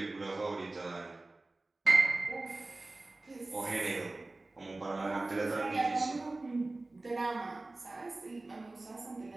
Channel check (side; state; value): left; quieter; 3.1 dB